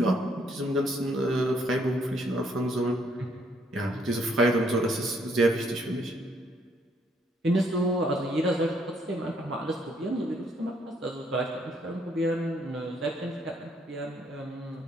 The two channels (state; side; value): normal; both; correlation 0.69